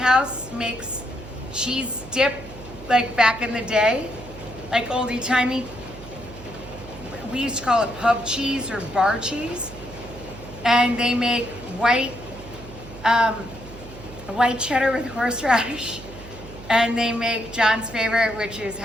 makes cheese dip like back in the day, like oldie timey. We used to call it pub cheese or bar cheese. And they make white cheddar with horseradish. And they make John's favorite, which is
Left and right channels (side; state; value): right; noise; hum, 16 dB below the sound